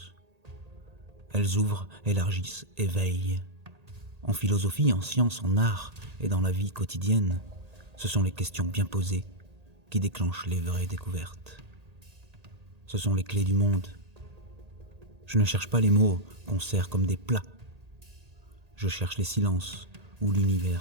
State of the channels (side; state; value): left; late; 1.8 ms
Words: Elles ouvrent, élargissent, éveillent. En philosophie, en science, en art et dans la vie quotidienne, ce sont les questions bien posées qui déclenchent les vraies découvertes. Ce sont les clés du monde. Je ne cherche pas les mots qu'on sert comme des plats. je cherche les silences où